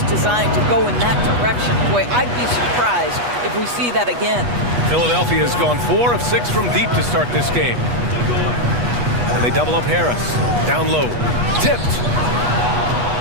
designed to go in that direction. Boy, I'd be surprised if we see that again. Philadelphia has gone 4 of 6 from deep to start this game. And they double up Harris. Down low. Tipped.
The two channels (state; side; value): late; left; 8.2 ms